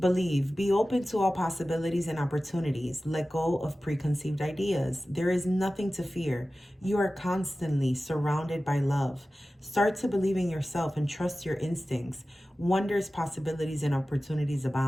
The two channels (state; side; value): normal; both; correlation 0.95